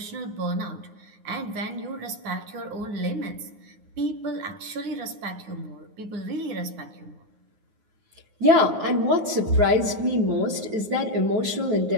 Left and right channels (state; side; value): late; left; 9.6 ms